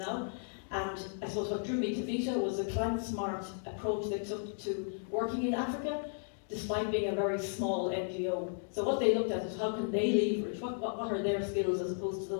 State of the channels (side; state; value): right; silent; digital silence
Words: And I suppose what drew me to Vita was the climate-smart approach they took to working in Africa, despite being a very small NGO. So what they looked at is how can they leverage, what are their skills as opposed to the